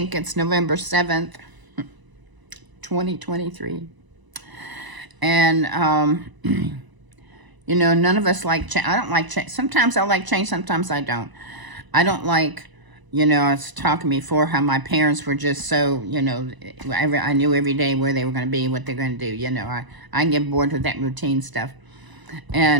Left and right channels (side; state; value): left; late; 1.0 ms